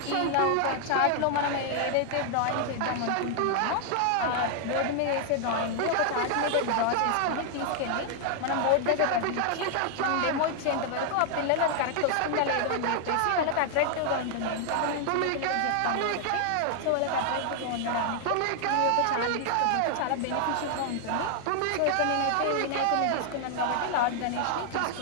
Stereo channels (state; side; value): different; both; correlation 0.00